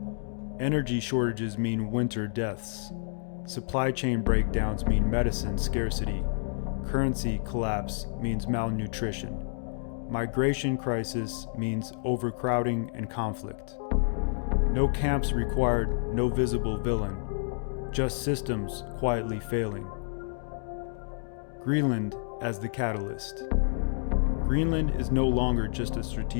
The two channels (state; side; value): silent; right; digital silence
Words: Energy shortages mean winter deaths. Supply chain breakdowns mean medicine scarcity. Currency collapse means malnutrition. Migration crisis means overcrowding and conflict. No camps required, no visible villain, just systems quietly failing. Greenland as the catalyst. Greenland is no longer just a